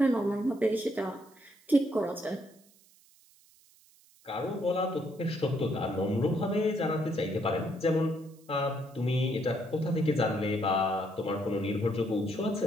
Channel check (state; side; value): noise; right; hiss, 29 dB below the sound